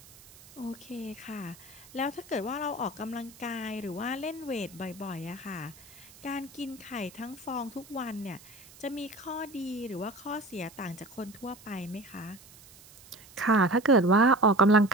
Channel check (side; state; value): right; noise; hiss, 22 dB below the sound